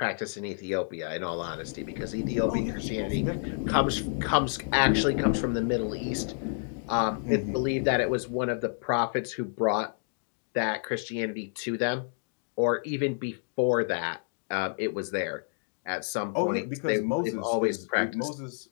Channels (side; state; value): right; silent; digital silence